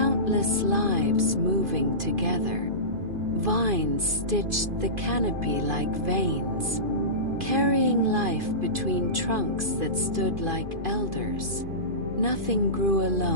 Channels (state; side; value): late; left; 2.5 ms